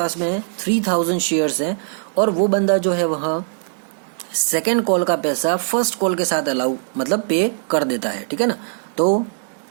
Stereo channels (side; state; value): left; silent; digital silence